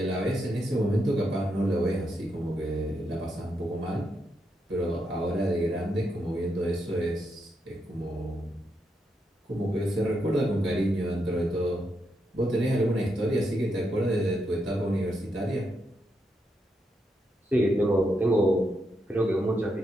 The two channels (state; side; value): normal; both; correlation 0.82